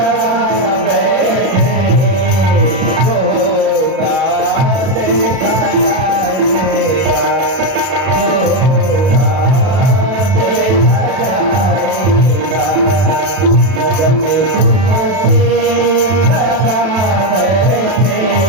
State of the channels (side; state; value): left; late; 31 ms